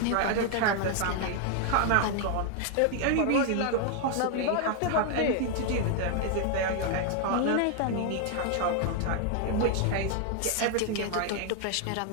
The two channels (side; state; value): both; different; correlation 0.00